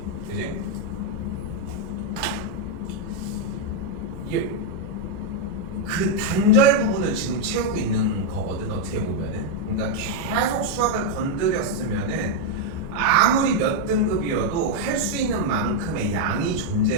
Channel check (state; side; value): normal; both; correlation 0.00